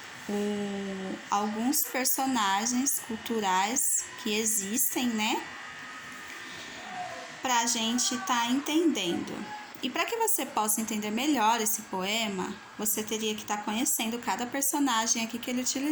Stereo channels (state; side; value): identical; both; correlation 1.00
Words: Alguns personagens culturais que existem, né? Para a gente estar entendendo. E para que você possa entender melhor esse poema, você teria que estar conhecendo cada personagem aqui que ele